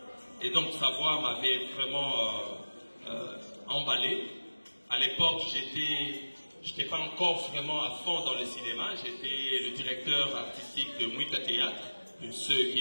Et donc sa voix m'avait vraiment emballé. À l'époque, j'étais pas encore vraiment à fond dans le cinéma. J'étais le directeur artistique de Mouika Théâtre. Ceux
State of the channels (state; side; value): inverted; both; correlation -1.00